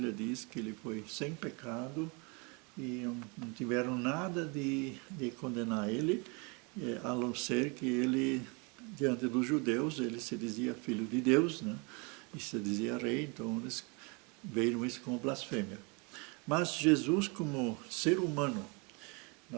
diz que ele foi sem pecado e não tiveram nada de condenar ele, a não ser que ele, diante dos judeus, ele se dizia filho de Deus, né? E se dizia rei, então eles veem isso como blasfêmia. Mas Jesus, como ser humano,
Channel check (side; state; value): left; quieter; 31.0 dB